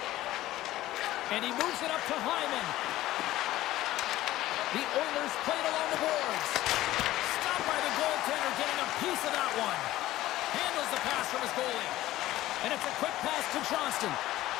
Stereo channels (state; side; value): quieter; right; 15.5 dB